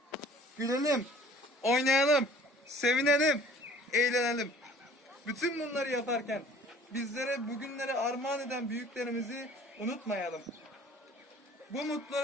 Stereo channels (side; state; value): both; normal; correlation 0.51